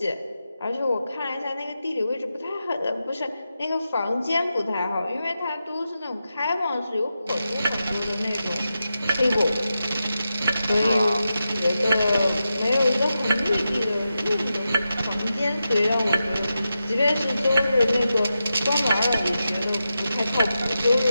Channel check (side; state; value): both; inverted; correlation -0.90